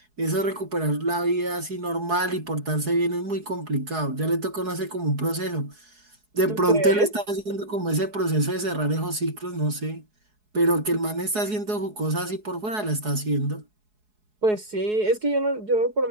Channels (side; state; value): left; late; 4.7 ms